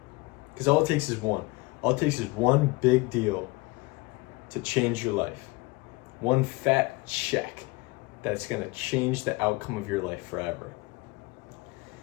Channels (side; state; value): right; quieter; 23.3 dB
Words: Because all it takes is one. All it takes is one big deal to change your life. One fat check that's gonna change the outcome of your life forever.